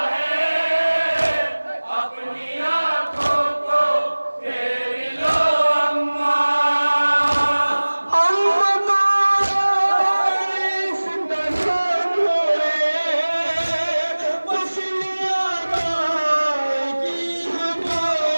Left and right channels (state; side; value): inverted; both; correlation -1.00